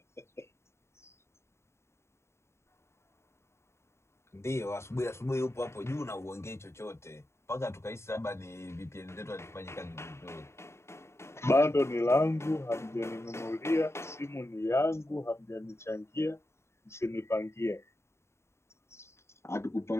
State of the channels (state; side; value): late; right; 0.13 ms